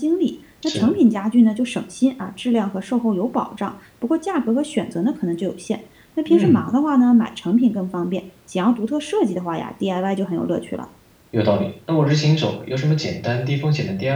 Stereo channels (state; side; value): identical; both; correlation 1.00